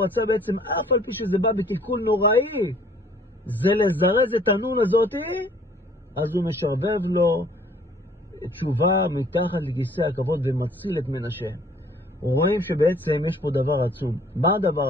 רצה בעצם, אף על פי שזה בא בקלקול נוראי, זה לזרז את הנון הזאת, אז הוא משרבב לו תשובה מתחת לכיסא הכבוד ומציל את מנשה. רואים שבעצם יש פה דבר עצום. מה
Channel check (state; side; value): normal; both; correlation 0.57